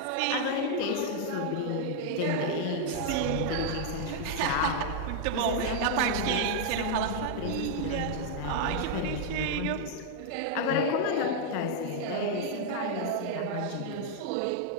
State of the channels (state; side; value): different; both; correlation 0.00